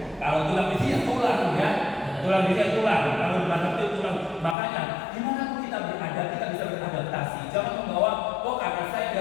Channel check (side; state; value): right; drops out; at 4.5 s